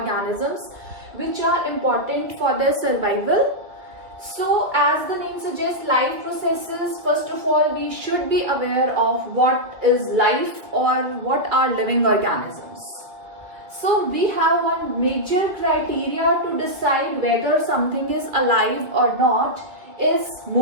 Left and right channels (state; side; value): late; left; 2.4 ms